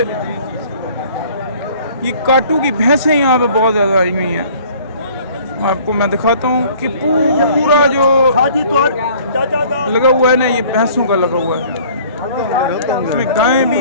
ये काटू की भैंसें यहाँ पे बहुत ज़्यादा आई हुई हैं। आपको मैं दिखाता हूँ कि पूरा जो लगा हुआ है ना, ये भैंसों का लगा हुआ है, इसमें गायें भी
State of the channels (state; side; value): inverted; both; correlation -0.53